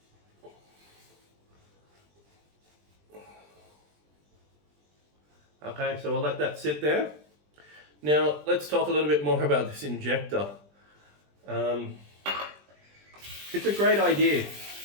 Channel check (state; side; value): late; left; 20 ms